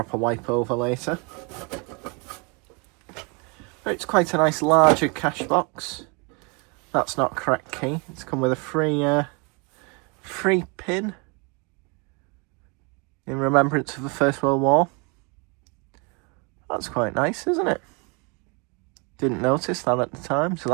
wipe over later. But it's quite a nice larger cash box. That's not correct key. It's come with a free pin in remembrance of the First World War. That's quite nice, isn't it? Didn't notice that at the time, so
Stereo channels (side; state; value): left; quieter; 31.8 dB